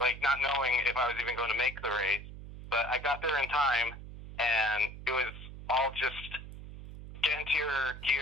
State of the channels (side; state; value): right; noise; hum, 13 dB below the sound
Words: not knowing if I was even going to make the race, but I got there in time, and it was all just get into your